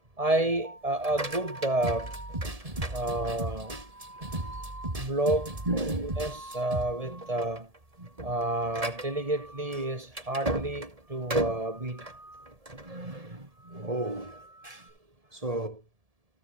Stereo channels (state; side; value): late; left; 1.7 ms